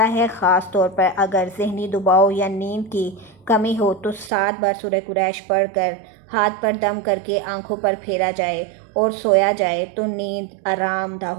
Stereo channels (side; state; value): left; drops out; at 4.3 s